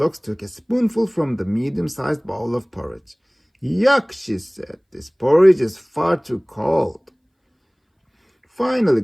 took a spoonful from the medium-sized bowl of porridge. Yuck, she said, this porridge is far too cold. Finally,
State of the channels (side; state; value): both; identical; correlation 1.00